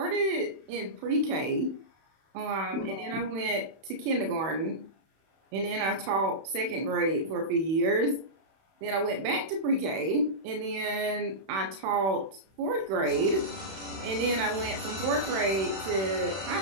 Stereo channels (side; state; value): left; late; 31 ms